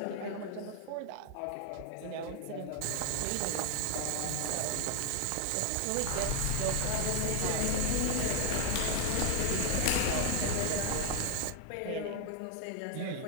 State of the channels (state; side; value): different; both; correlation 0.00